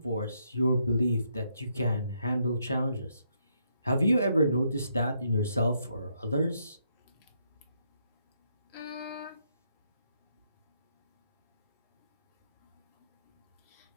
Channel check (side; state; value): both; inverted; correlation -0.76